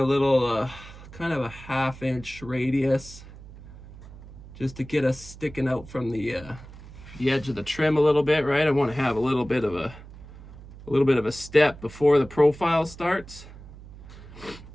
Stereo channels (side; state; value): right; noise; hum, 17 dB below the sound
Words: little kind of a 1/2 inch radius, just to get us sticking out from the edge of the trim a little bit, right? I want to have a little bit of a step before the profile starts.